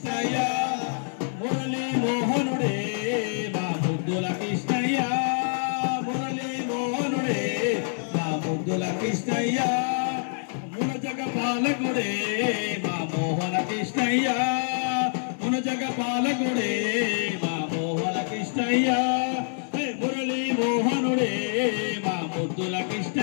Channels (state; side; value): silent; right; digital silence